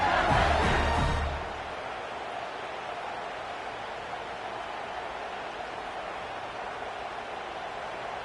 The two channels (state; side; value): identical; both; correlation 1.00